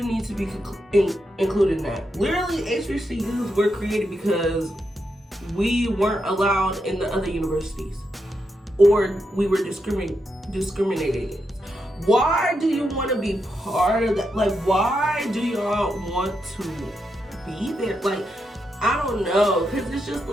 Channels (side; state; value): both; normal; correlation 0.84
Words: need to be included in that? Literally, HBCUs were created because we weren't allowed in the other universities, or we were discriminated against. Why do you want to be part of that? Like, why do y'all want to be there? Like, I don't know, because it's just